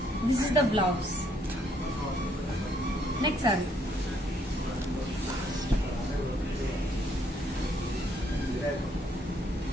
this is the blouse. Next saree.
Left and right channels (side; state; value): both; normal; correlation 0.69